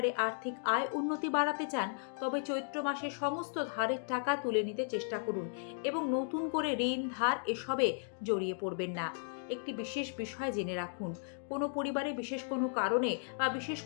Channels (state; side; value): silent; right; digital silence